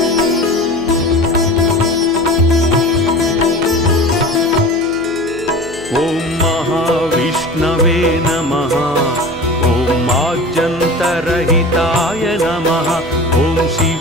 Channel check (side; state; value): right; noise; hum, 18 dB below the sound